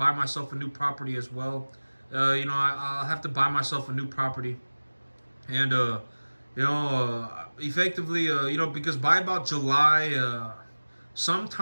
myself a new property as well. I'll have to buy myself a new property, and effectively, because by about July,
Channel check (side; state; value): both; inverted; correlation -1.00